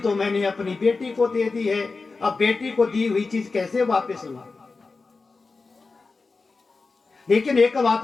मैंने अपनी बेटी को दे दी है, अब बेटी को दी हुई चीज कैसे वापस लूं? लेकिन एक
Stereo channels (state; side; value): quieter; right; 4.1 dB